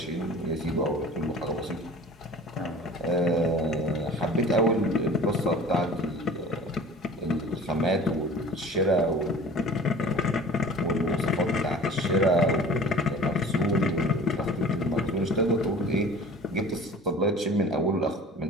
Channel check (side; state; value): both; normal; correlation 0.43